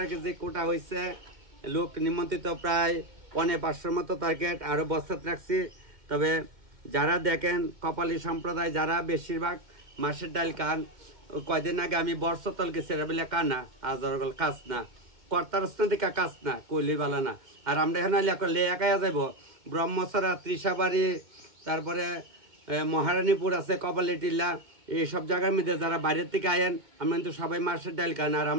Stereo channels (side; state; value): left; late; 2.1 ms